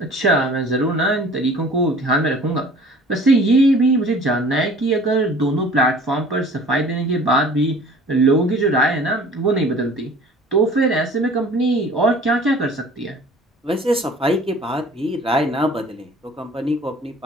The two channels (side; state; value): both; normal; correlation 0.48